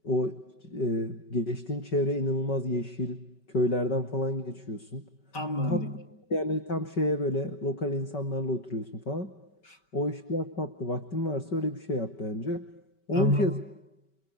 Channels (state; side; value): late; right; 5.2 ms